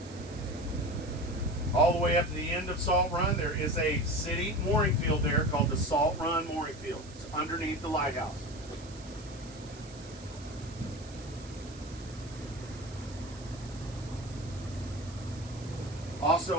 All the way up to the end of Salt Run, there is a city mooring field there called the Salt Run Mooring Field. It's underneath the lighthouse.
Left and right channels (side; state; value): right; noise; hiss, 19 dB below the sound